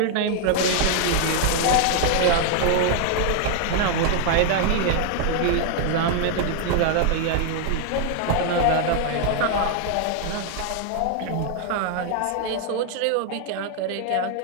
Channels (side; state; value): both; different; correlation 0.00